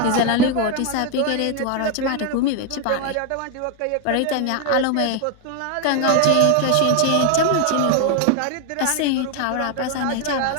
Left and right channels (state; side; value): different; both; correlation 0.01